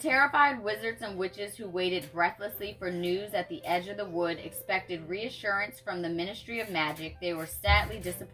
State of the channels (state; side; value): identical; both; correlation 1.00